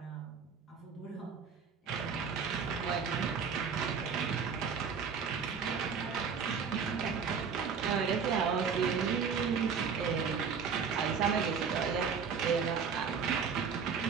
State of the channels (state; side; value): quieter; left; 6.2 dB